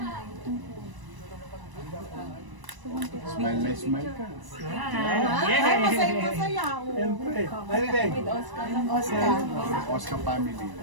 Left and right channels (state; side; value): late; left; 1.0 ms